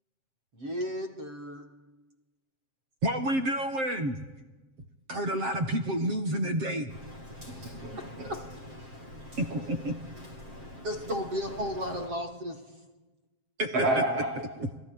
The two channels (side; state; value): left; late; 7.5 ms